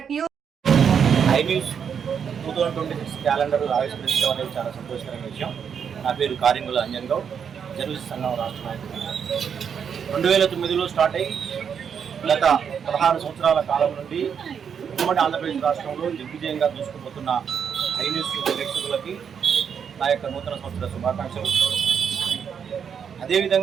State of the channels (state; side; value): quieter; left; 7.3 dB